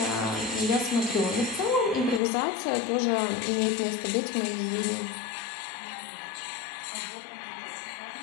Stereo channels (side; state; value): right; drops out; at 2.2 s